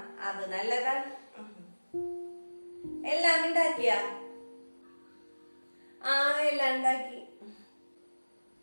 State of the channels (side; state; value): both; inverted; correlation -1.00